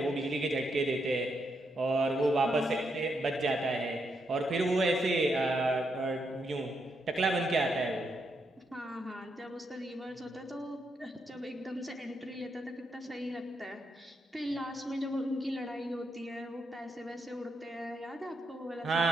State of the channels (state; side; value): normal; both; correlation 0.80